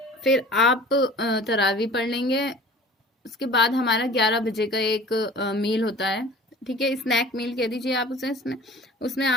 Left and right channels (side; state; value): both; normal; correlation 0.44